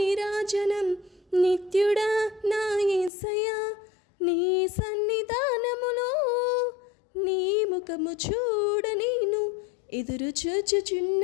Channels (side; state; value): right; drops out; at 3.1 s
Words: నిత్యుడా నా యేసయ్యా, నీ సన్నిధానములో నీ ముఖము చూడ నేను ఎదురు